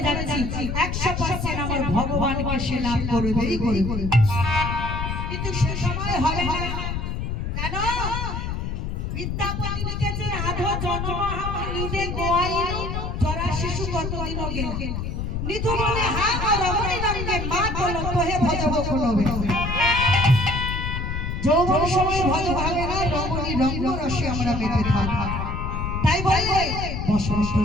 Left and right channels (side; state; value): left; noise; rumble, 3 dB below the sound